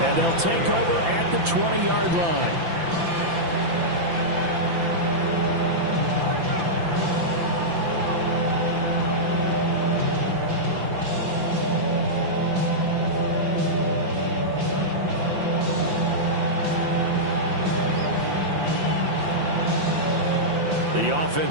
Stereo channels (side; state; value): left; late; 5.9 ms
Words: and they'll take over at the 20-yard line. The